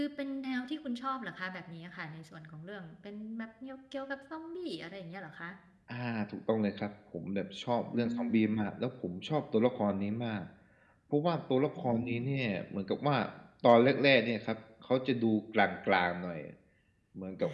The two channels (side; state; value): both; identical; correlation 1.00